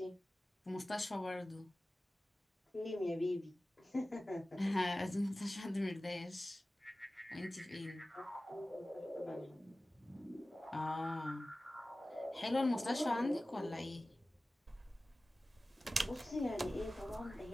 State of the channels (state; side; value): normal; both; correlation 0.96